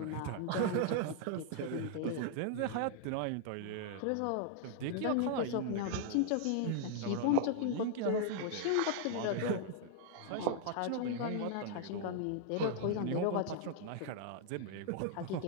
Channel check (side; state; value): both; different; correlation 0.00